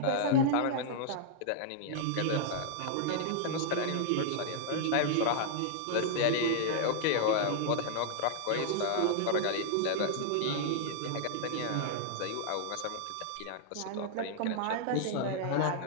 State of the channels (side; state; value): both; different; correlation -0.01